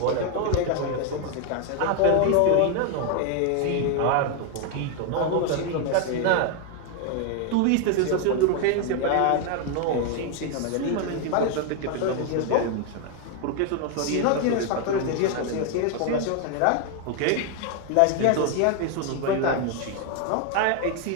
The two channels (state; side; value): different; both; correlation 0.01